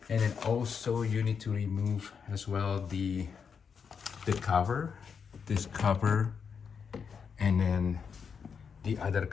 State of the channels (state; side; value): quieter; right; 6.4 dB